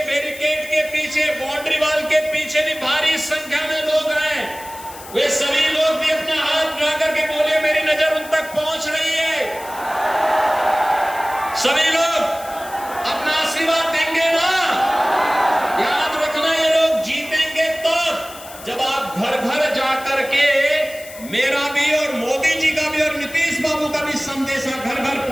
बैरिकेड के पीछे, बाउंड्री वॉल के पीछे भी भारी संख्या में लोग हैं, वे सभी लोग भी अपना हाथ उठा करके बोले मेरी नजर उन तक पहुंच रही है। सभी लोग अपना आशीर्वाद देंगे ना? याद रखना, ये लोग जीतेंगे तब जब आप घर घर जाकर के मेरा भी और मोदी जी का भी और नीतीश बाबू का भी संदेशा घर घर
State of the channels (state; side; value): noise; left; hiss, 16 dB below the sound